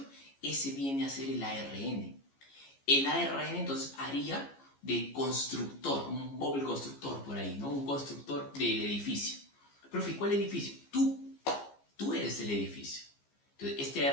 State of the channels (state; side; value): late; right; 15 ms